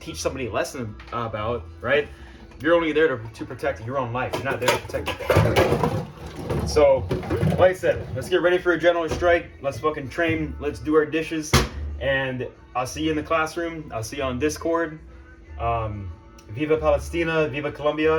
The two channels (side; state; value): both; identical; correlation 1.00